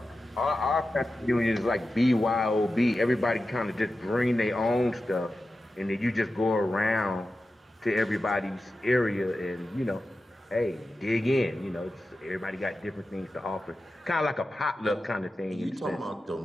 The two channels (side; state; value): both; normal; correlation 0.92